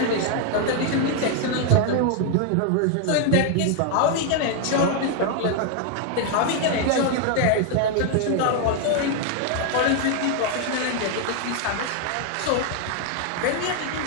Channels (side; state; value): both; different; correlation 0.00